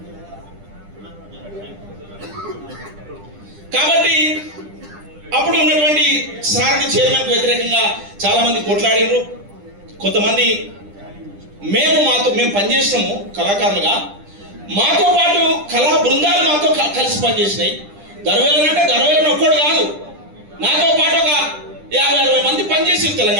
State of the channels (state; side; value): late; left; 10 ms